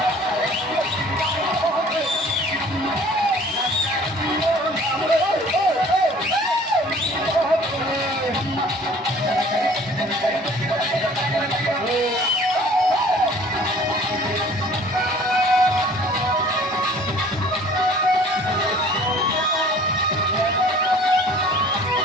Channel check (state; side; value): normal; both; correlation 0.50